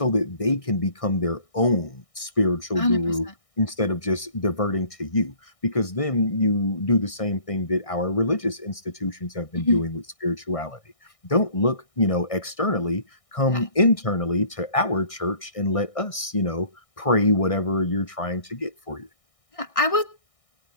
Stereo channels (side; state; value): right; late; 1.6 ms